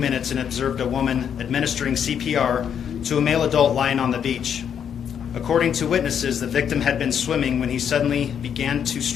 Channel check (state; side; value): quieter; right; 8.2 dB